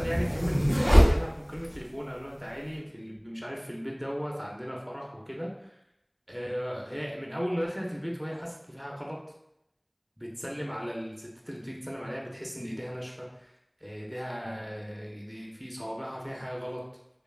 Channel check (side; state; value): both; identical; correlation 1.00